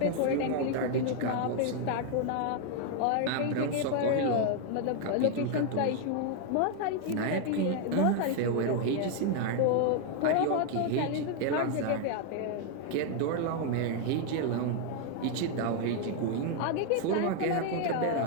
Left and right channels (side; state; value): both; different; correlation 0.00